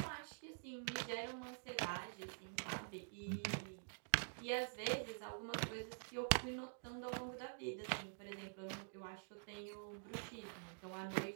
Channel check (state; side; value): silent; left; digital silence